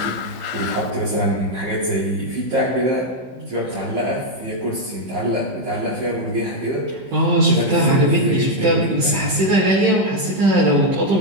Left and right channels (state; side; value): late; left; 15 ms